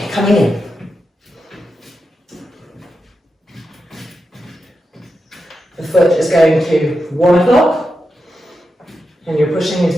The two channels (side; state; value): both; normal; correlation 0.88